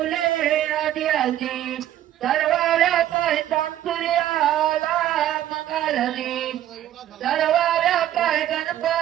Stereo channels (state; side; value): quieter; left; 12.5 dB